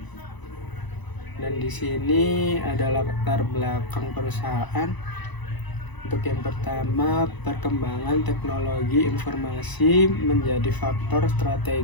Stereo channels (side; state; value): right; late; 1.0 ms